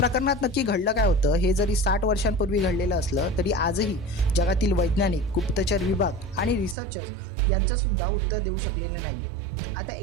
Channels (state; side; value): drops out; left; at 6.8 s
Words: नक्की घडलं काय होतं हे जरी 60 वर्षांपूर्वी घडलेलं असलं तरी आजही जगातील वैज्ञानिक, गुप्तचर विभाग आणि रिसर्चर्स यांचंसुद्धा उत्तर देऊ शकलेले नाही आहेत. आता